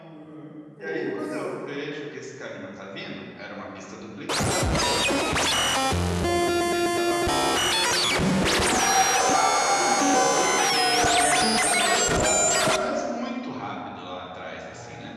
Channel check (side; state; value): both; identical; correlation 1.00